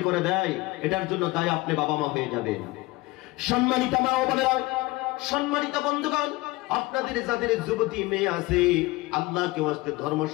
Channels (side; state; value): right; quieter; 21.2 dB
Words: করে দেয়, এটার জন্য তাই আপনি বাবা মা হয়ে যাবেন। সম্মানিত মা ও বোনেরা, সম্মানিত বন্ধুগণ, আপনাদের যাদের যুবতী মেয়ে আছে, আল্লাহকে ওয়াস্তে